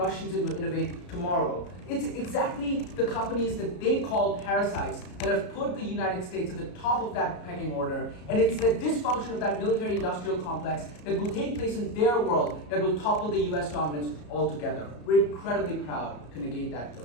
innovate tomorrow. It's exactly the companies that they call parasites that have put the United States at the top of that pecking order, and it's the dysfunction of that military-industrial complex that will take place in their world that will topple the US dominance altogether. We're incredibly proud to negate that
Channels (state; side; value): late; right; 33 ms